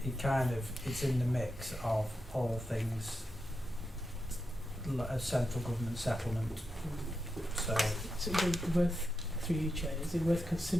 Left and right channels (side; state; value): both; normal; correlation 0.88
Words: it's in the mix of all things a central government settlement. So is it worth, through you, Chair, is it worth